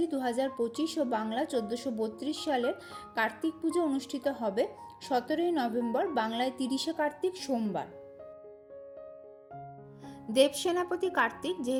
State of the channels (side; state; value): both; identical; correlation 1.00